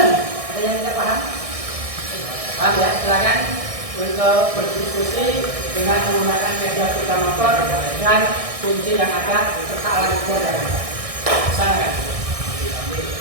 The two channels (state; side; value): late; left; 1.6 ms